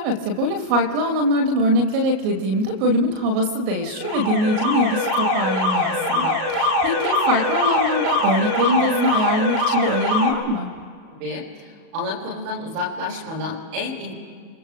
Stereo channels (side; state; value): left; late; 37 ms